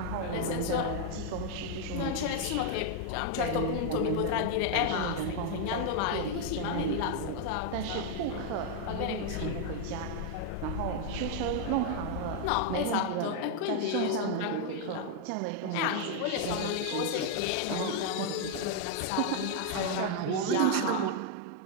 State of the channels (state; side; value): different; both; correlation 0.00